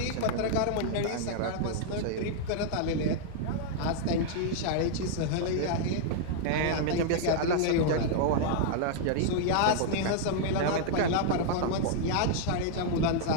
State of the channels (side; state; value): both; different; correlation -0.01